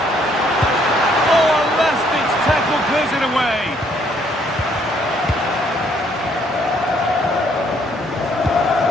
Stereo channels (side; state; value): both; normal; correlation 0.67